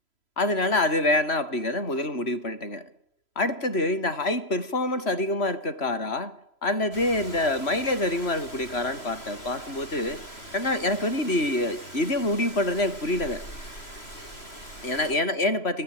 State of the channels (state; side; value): late; right; 3.0 ms